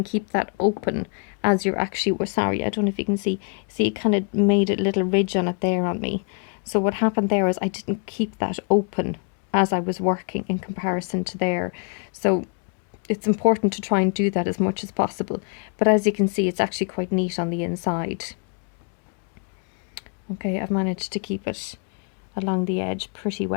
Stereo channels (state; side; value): quieter; right; 39.0 dB